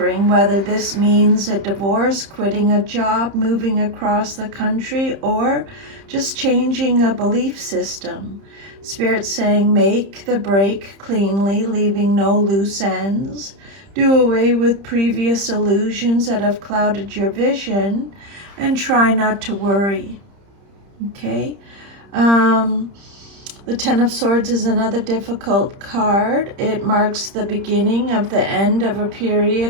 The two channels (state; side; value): late; left; 30 ms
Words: whether this means a divorce, quitting a job, moving across the country, or just changing a belief system. Spirit's saying make the break cleanly, leaving no loose ends. Do away with previous illusions that have clouded your vision, and try not to worry. Okay? The Ten of Swords is another difficult card. It marks the beginning of the end of a